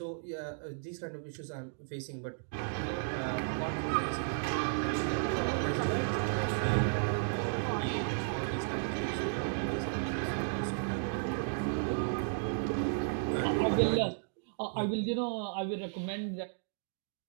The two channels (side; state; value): left; silent; digital silence